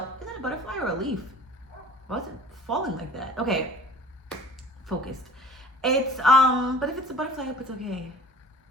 Is that a butterfly or a leaf? Why is it falling like that? Okay, focused. It's but if it's a butterfly, I hope it's okay.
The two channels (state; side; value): normal; both; correlation 0.45